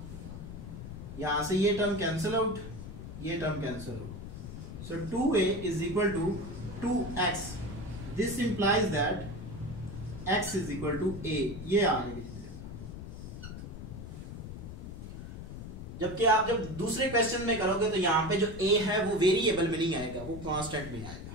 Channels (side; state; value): left; noise; rumble, 10 dB below the sound